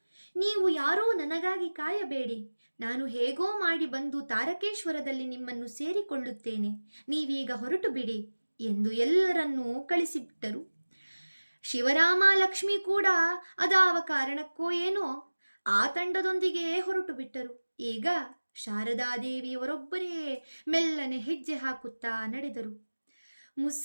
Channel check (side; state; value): both; inverted; correlation -1.00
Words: ನೀವು ಯಾರೂ ನನಗಾಗಿ ಕಾಯಬೇಡಿ, ನಾನು ಹೇಗೋ ಮಾಡಿ ಬಂದು ತಾರಕೇಶ್ವರದಲ್ಲಿ ನಿಮ್ಮನ್ನು ಸೇರಿಕೊಳ್ಳುತ್ತೇನೆ, ನೀವೀಗ ಹೊರಟು ಬಿಡಿ ಎಂದು ಎಲ್ಲರನ್ನೂ ಕಳಿಸಿಬಿಟ್ಟರು. ಶಿವರಾಮ, ಲಕ್ಷ್ಮಿ ಕೂಡ ಅದಾವ ಕಾರಣಕ್ಕೋ ಏನೋ ಆ ತಂಡದೊಂದಿಗೆ ಹೊರಟು ಬಿಟ್ಟರು. ಈಗ ಶಾರದಾದೇವಿಯವರೊಬ್ಬರೇ ಮೆಲ್ಲನೆ ಹೆಜ್ಜೆ ಹಾಕುತ್ತಾ ನಡೆದರು.